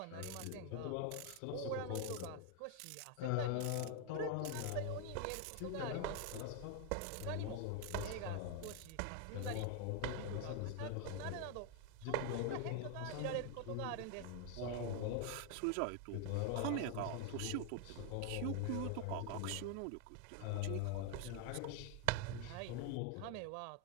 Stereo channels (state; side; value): different; both; correlation 0.00